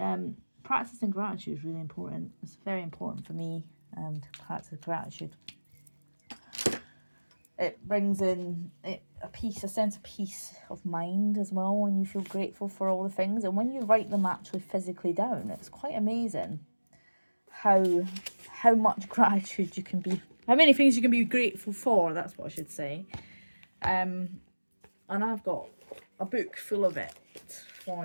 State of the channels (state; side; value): inverted; both; correlation -1.00